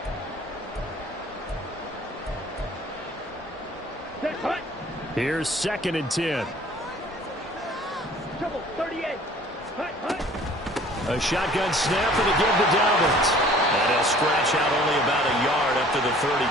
Here's 2nd and 10. Trouble, 38. Hut. A shotgun snap and a give to Dobbins. And he'll scratch out only about a yard up to the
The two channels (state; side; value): normal; both; correlation 0.51